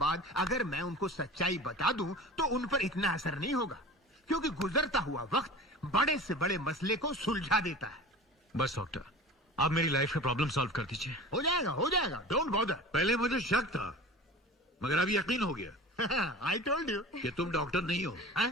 अगर मैं उनको सच्चाई बता दूं तो उन पर इतना असर नहीं होगा, क्योंकि गुजरता हुआ वक्त बड़े से बड़े मसले को सुलझा देता है। बस डॉक्टर, आप मेरी लाइफ का प्रॉब्लम सॉल्व कर दीजिए। हो जाएगा, डोंट बॉदर। पहले मुझे शक था, मगर अब यकीन हो गया। आई टोल्ड यू कि तुम डॉक्टर नहीं हो। हाँ?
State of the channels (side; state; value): both; normal; correlation 0.37